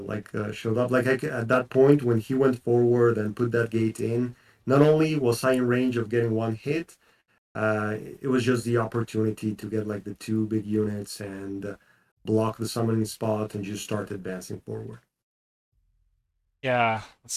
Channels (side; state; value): both; identical; correlation 1.00